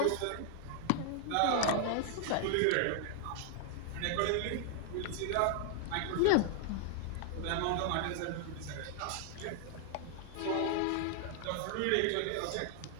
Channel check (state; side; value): different; both; correlation 0.00